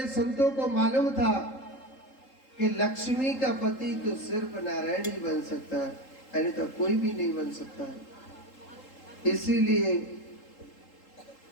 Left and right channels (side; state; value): right; late; 3.8 ms